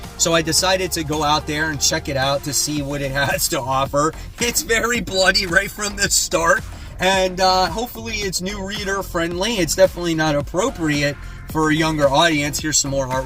so I decided to go out there and check it out to see what it has to offer. It's very bloody right from the start, and hopefully it's new reader friendly. It's definitely not appropriate for a younger audience. Here's some more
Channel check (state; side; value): identical; both; correlation 1.00